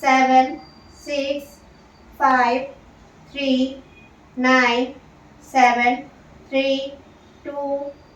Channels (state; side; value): identical; both; correlation 1.00